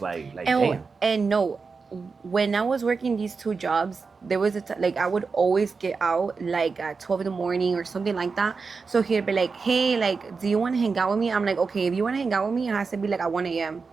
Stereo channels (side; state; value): left; quieter; 4.8 dB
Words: like damn. And no, when I was working these 2 jobs, there was like I would always get out like at 12 in the morning or something like that. So he'd be like, hey, like, do you want to hang out with me? I'm like, okay, if you want to hang out with me, it has to be like at 1 a.m.